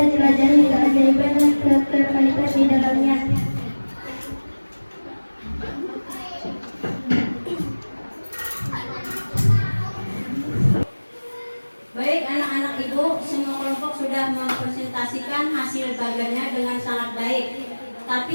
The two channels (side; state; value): both; inverted; correlation -1.00